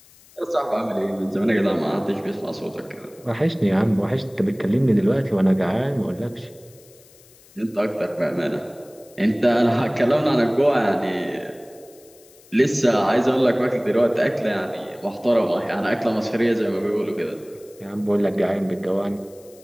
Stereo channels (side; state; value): left; noise; hiss, 26 dB below the sound